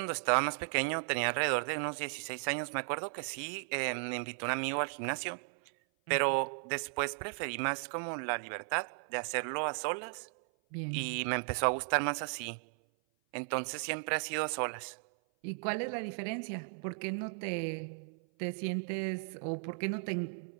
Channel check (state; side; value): silent; left; 54 dB below the other